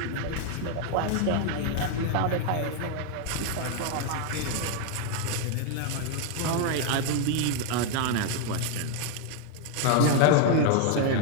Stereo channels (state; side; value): different; both; correlation 0.00